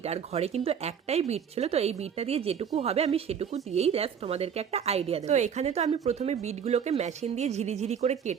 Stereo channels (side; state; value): left; quieter; 7.7 dB